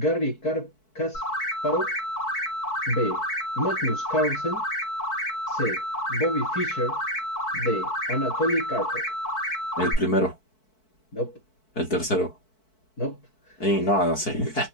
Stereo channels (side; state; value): right; late; 4.6 ms